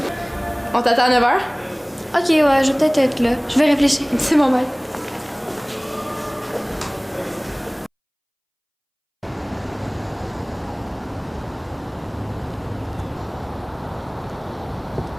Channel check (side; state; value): both; identical; correlation 1.00